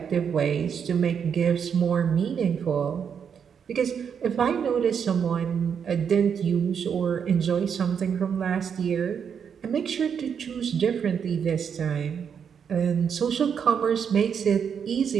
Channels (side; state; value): left; quieter; 7.3 dB